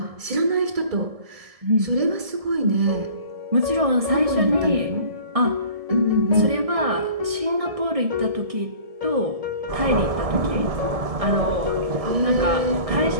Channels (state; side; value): late; left; 1.7 ms